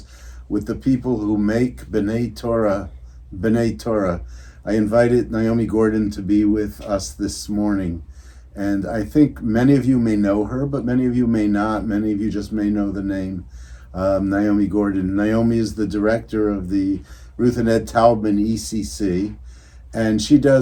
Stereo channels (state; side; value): identical; both; correlation 1.00